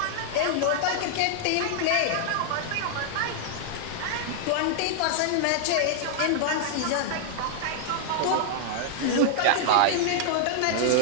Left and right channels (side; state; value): both; different; correlation -0.01